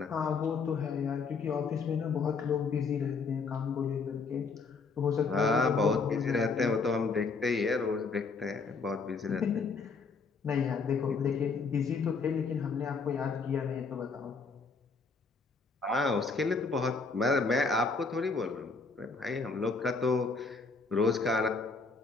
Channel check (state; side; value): quieter; right; 4.5 dB